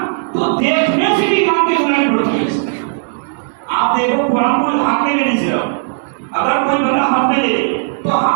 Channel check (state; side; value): silent; left; digital silence